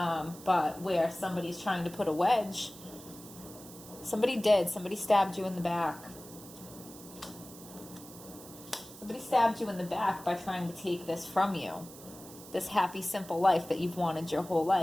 but where somebody's trying to put a wedge. Somebody stabbed you in the back. Somebody stabbed you in the back by trying to take this from you. This happy, simple life that you've wanted your whole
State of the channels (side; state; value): right; noise; hiss, 17 dB below the sound